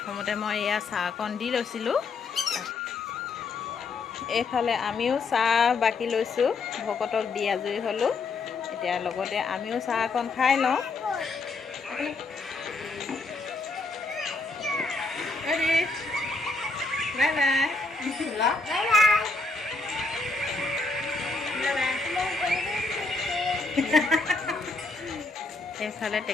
মই এয়া চাহকণ দি লৈছিলোঁ। এইফালে আমিও চাহ বাকি লৈছোঁ, ভকতক দি আজৰি হ'লোঁ। এতিয়া লগতে আমিও চাহকণ খাই লওঁ। বাই এইফালে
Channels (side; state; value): right; quieter; 3.8 dB